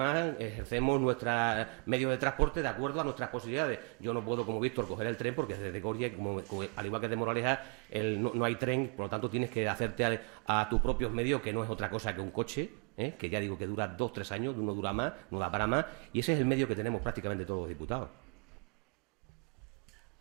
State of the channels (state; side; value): quieter; left; 37.0 dB